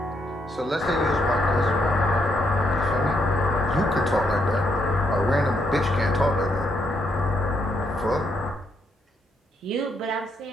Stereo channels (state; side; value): normal; both; correlation 0.75